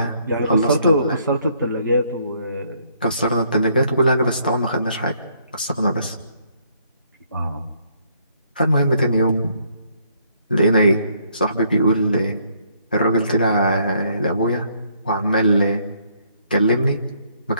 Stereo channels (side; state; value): both; inverted; correlation -0.68